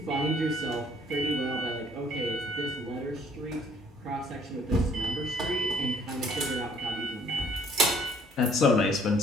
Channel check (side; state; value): both; normal; correlation 0.60